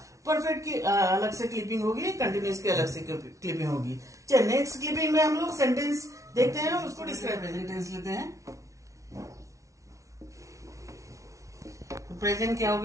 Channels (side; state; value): left; late; 0.15 ms